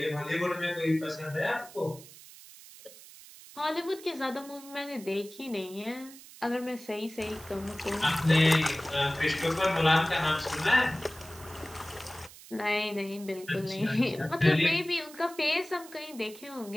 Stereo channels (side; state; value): right; noise; hiss, 18 dB below the sound